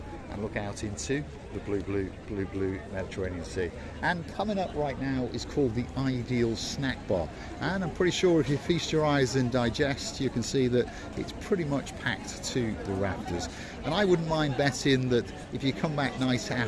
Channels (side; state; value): both; identical; correlation 1.00